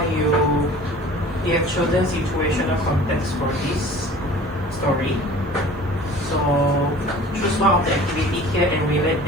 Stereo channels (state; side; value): normal; both; correlation 0.45